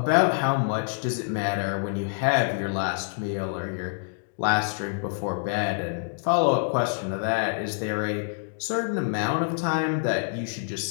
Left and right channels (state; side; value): silent; right; digital silence